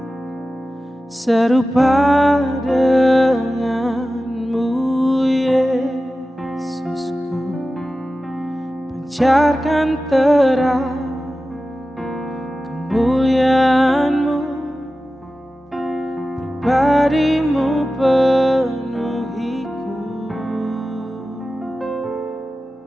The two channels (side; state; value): both; normal; correlation 0.95